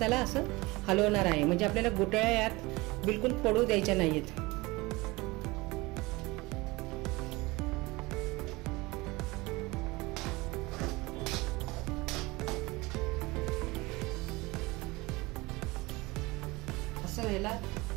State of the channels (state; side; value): quieter; left; 22.7 dB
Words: असं हलवणार आहे. म्हणजे आपल्याला गुठळ्या यात बिलकुल पडू द्यायच्या नाहीत. असं